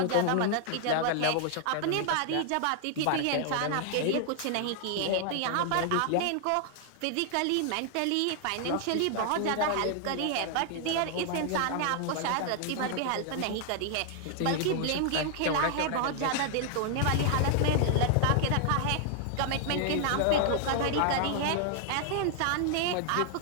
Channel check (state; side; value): different; both; correlation 0.00